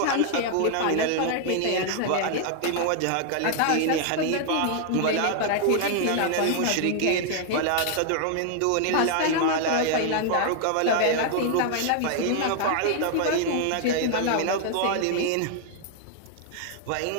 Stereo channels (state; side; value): different; both; correlation 0.00